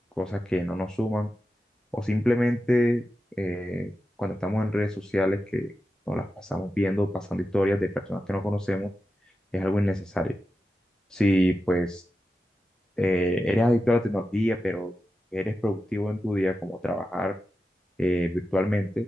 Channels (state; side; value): normal; both; correlation 0.91